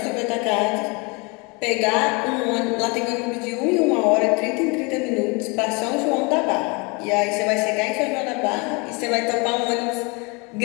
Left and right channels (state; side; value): quieter; right; 29.4 dB